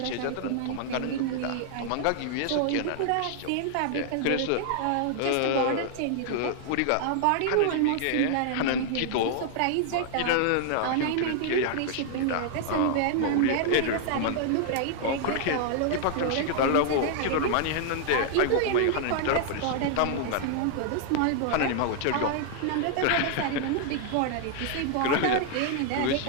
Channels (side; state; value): both; different; correlation 0.00